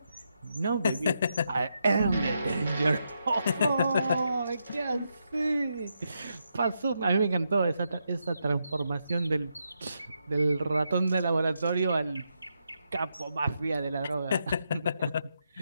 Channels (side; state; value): both; inverted; correlation -0.83